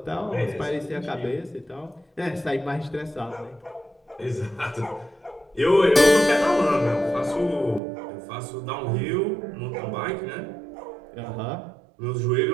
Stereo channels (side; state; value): left; drops out; at 7.8 s